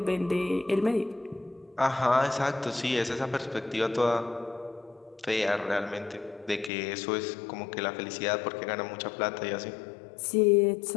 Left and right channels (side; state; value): right; drops out; at 6.7 s